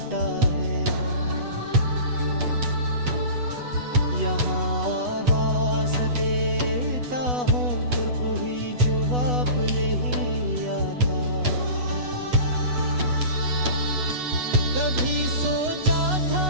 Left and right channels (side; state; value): left; late; 8.1 ms